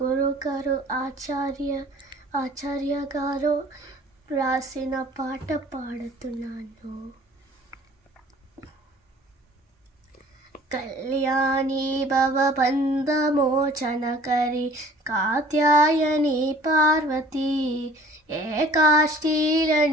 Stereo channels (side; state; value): both; normal; correlation 0.51